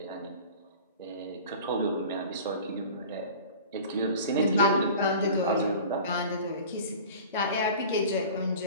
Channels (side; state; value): both; inverted; correlation -0.40